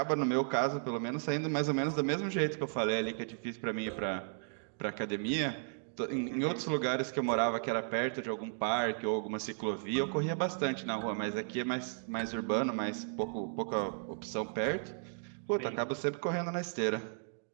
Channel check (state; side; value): silent; left; digital silence